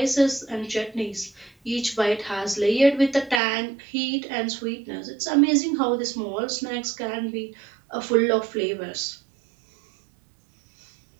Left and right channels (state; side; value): drops out; left; at 3.4 s